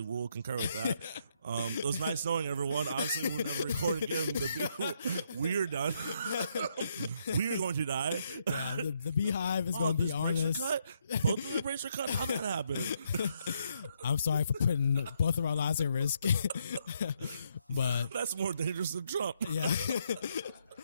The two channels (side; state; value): both; inverted; correlation -0.74